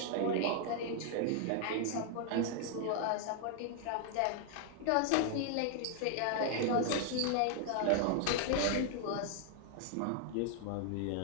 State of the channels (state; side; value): different; both; correlation 0.00